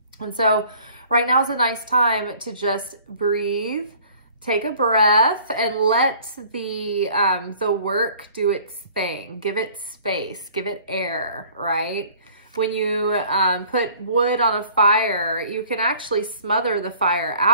And so right now is a nice time to just breathe, take a breath, and let the work do its thing. Give it space, give it air, right? When you put wood on a fire, you can actually smother the fire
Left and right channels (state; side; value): inverted; both; correlation -0.52